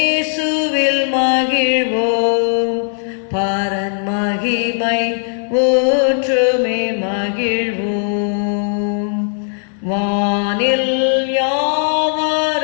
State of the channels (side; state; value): right; silent; 68 dB below the other